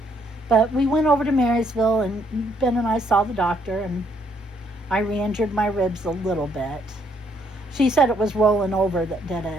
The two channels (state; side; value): normal; both; correlation 0.69